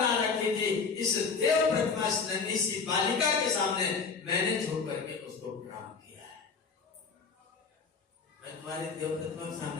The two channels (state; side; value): quieter; right; 5.1 dB